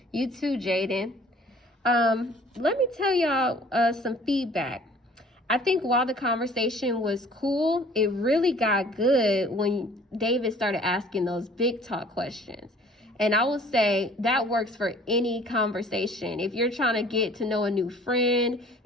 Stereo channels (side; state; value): both; normal; correlation 0.52